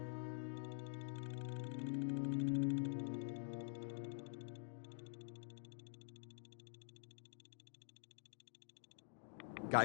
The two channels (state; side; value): silent; right; digital silence